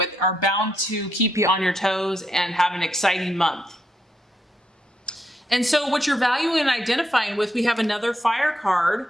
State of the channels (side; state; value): both; normal; correlation 0.79